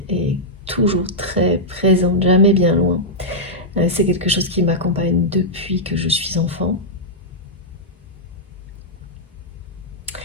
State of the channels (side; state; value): both; normal; correlation -0.07